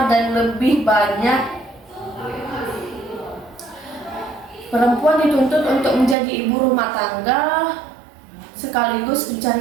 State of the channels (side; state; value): left; drops out; at 6.2 s